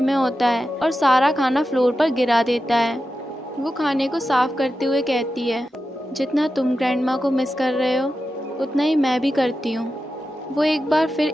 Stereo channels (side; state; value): both; normal; correlation 0.91